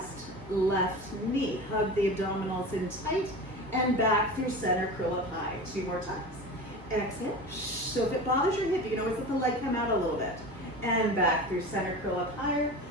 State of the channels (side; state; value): both; normal; correlation 0.31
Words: left knee. Hug the abdominals in tight, and back through center, curl up high. 2 more times. Exhale. So if it bothers your hip, you can always let the leg come out a little bit. And back through center, curl up higher.